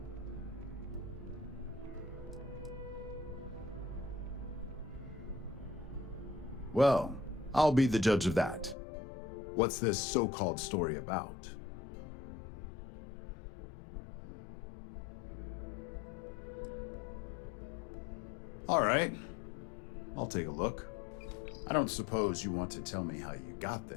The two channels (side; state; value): right; drops out; at 8.8 s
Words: Well, I'll be the judge of that. What's this so-called story about? All right, I'll take a look. I don't suppose you want to tell me how you got